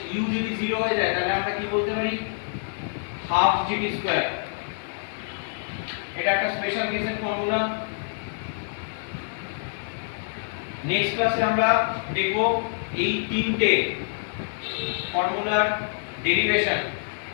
u যদি 0 হয়ে যায় তাহলে আমরা কি বলতে পারি? Half gt square. এটা একটা স্পেশাল কেসের ফর্মুলা। নেক্সট ক্লাসে আমরা দেখব এই তিনটে ফর্মুলার ডেরিভেশন,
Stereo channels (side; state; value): right; silent; digital silence